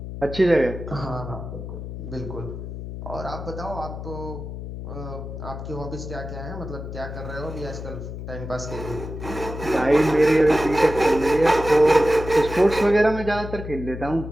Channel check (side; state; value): left; noise; hum, 8 dB below the sound